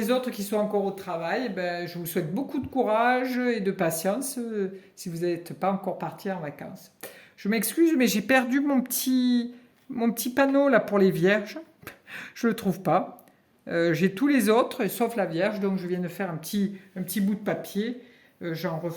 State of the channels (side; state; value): both; identical; correlation 1.00